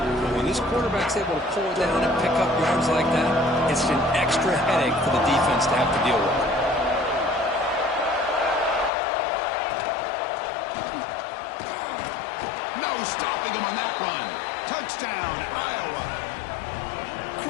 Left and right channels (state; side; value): drops out; right; at 8.9 s